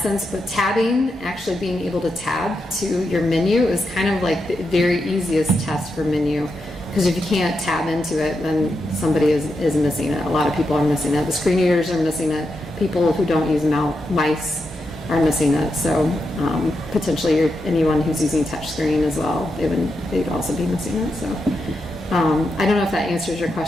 sense. But tabbing, actually being able to tab to your menu, is kind of like the very easiest test for menu. Because if you can't tab into it, then somebody is missing it. A lot of people are missing it. The screen readers are missing it. People who don't use mice are missing it. So potentially anyone who's using touchscreen as well, they'd also be missing it. So I don't know if that answers your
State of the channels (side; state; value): both; normal; correlation 0.86